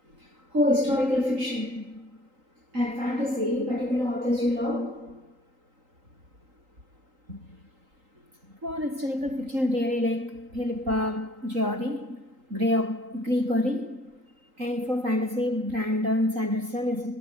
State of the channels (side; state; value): left; late; 3.8 ms